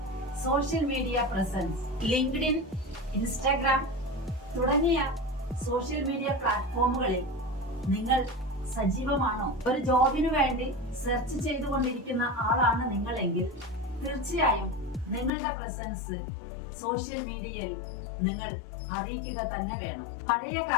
social media presence. LinkedIn, Instagram തുടങ്ങിയ സോഷ്യൽ മീഡിയ പ്ലാറ്റ്ഫോമുകളിൽ നിങ്ങൾ സജീവമാണോ? ഒരു ജോബിനു വേണ്ടി സെർച്ച് ചെയ്തുകൊണ്ടിരിക്കുന്ന ആളാണ് നിങ്ങളെങ്കിൽ തീർച്ചയായും നിങ്ങളുടെ പ്രസൻസ് സോഷ്യൽ മീഡിയയിൽ നിങ്ങൾ അറിയിക്കുക തന്നെ വേണം. പഴയ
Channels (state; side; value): drops out; right; at 15.3 s